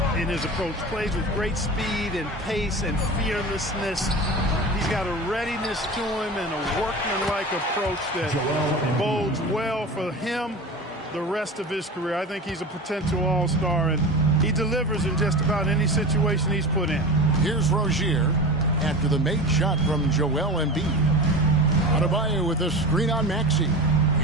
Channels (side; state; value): both; normal; correlation 0.31